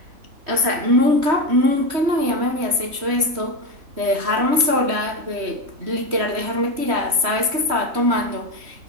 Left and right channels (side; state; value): left; late; 3.1 ms